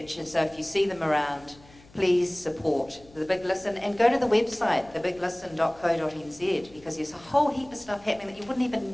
and so if you see them around, please support The Big Listen and go to the website, thebiglisten.co.nz, because there's a whole heap of stuff happening that you wouldn't even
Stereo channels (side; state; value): left; noise; hum, 25 dB below the sound